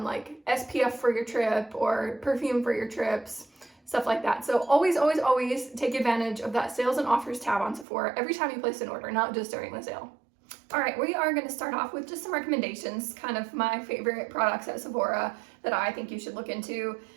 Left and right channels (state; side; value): drops out; left; at 7.9 s